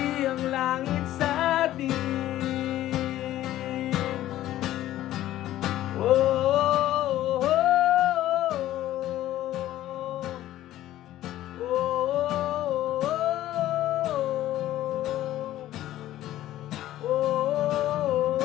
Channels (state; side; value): quieter; right; 13.9 dB